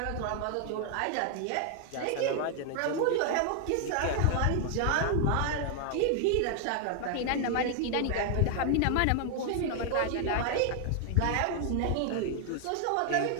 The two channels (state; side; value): different; both; correlation 0.00